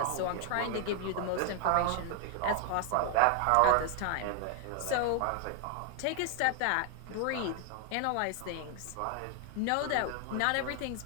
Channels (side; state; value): both; different; correlation 0.00